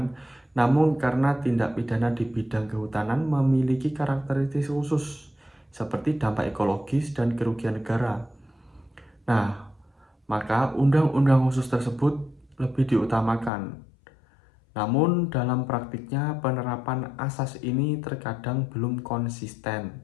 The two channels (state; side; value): drops out; right; at 13.5 s